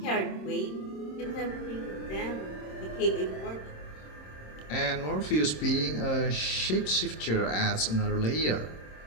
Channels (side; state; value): right; late; 26 ms